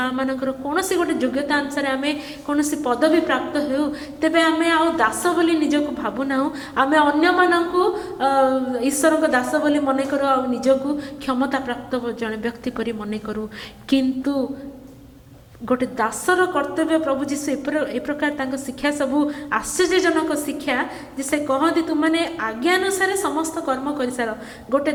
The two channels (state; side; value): identical; both; correlation 1.00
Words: ଆମମାନଙ୍କର କୌଣସି ଗୋଟେ ଯୋଗ୍ୟତା ଅନୁସାରେ ଆମେ କୌଣସି ପଦବୀ ପ୍ରାପ୍ତ ହେଉ ତେବେ ଆମେ ଆଉ ଦାସ ବୋଲି ନିଜକୁ ଭାବୁନାହୁଁ, ଆମେ ଅନ୍ୟମାନଙ୍କୁ ଈଶ୍ୱରଙ୍କ ଦାସ ବୋଲି ମନେ କରୁ ଆଉ ନିଜକୁ କ୍ଷମତା ପ୍ରାପ୍ତ ଜଣେ ବ୍ୟକ୍ତି ପରି ମନେ କରୁ। କିନ୍ତୁ ଗୋଟେ ଦାସର କର୍ତ୍ତବ୍ୟ ପ୍ରଭୁ ଯୀଶୁ ଏ ପ୍ରକାର ତାଙ୍କ ଶିକ୍ଷା ସବୁ ଆଶ୍ଚର୍ଯ୍ୟଜନକ ଶିକ୍ଷା ଯେ ସେ କହନ୍ତି ତୁମମାନେ ଆଜ୍ଞାନୁସାରେ ସମସ୍ତ କର୍ମ କରିସାର। ଗୋଟେ